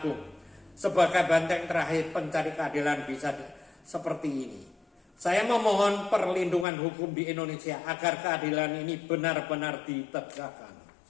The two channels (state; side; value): drops out; right; at 6.7 s